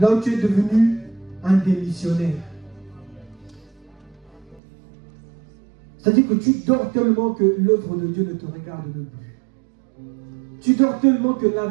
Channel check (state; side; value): drops out; left; at 4.6 s